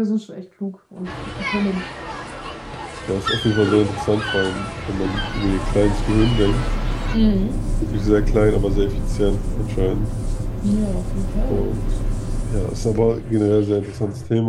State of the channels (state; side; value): identical; both; correlation 1.00